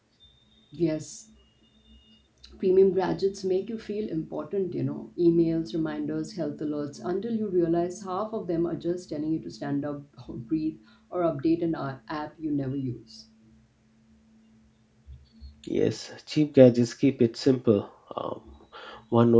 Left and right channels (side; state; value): both; identical; correlation 1.00